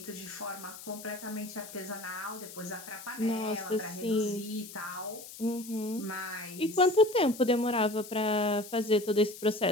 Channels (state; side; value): noise; left; hiss, 14 dB below the sound